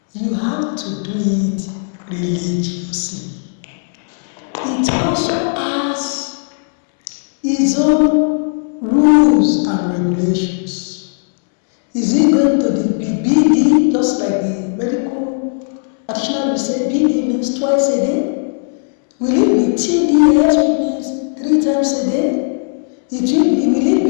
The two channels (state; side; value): silent; right; 69 dB below the other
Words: you have to do it religiously. It also has its own rules and regulations. Is it going to be BD, just like the medical practitioner will say BD means twice a day? Will it be TDS, which means 3 times a day? Will it